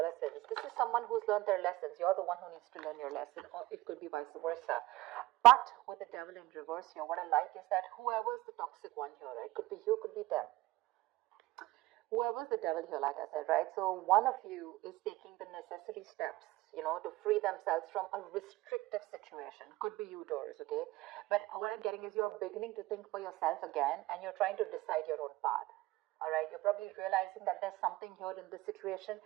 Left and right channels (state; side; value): quieter; left; 18.8 dB